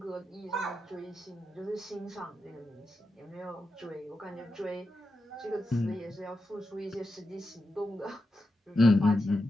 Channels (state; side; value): normal; both; correlation 0.88